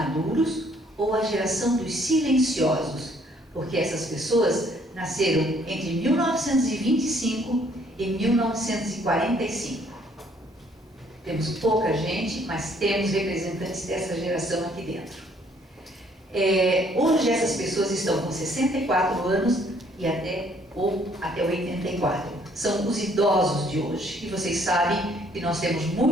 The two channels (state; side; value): normal; both; correlation 0.63